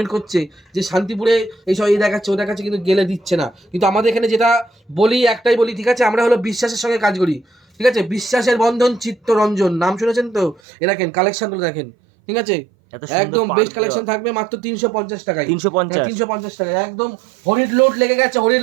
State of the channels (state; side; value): drops out; left; at 10.6 s